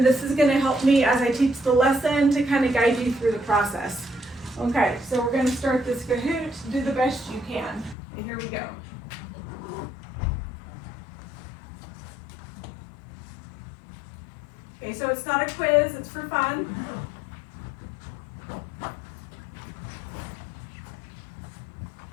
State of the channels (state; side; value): drops out; right; at 8.0 s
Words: this is going to help me as I teach the lesson to kind of guide you through the process. Okay, so we're going to start this Kahoot. Do the best you can. And here we go. Okay, so it's not a quiz, it's for fun.